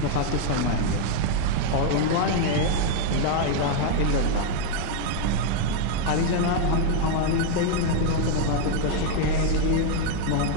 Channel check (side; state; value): both; different; correlation 0.01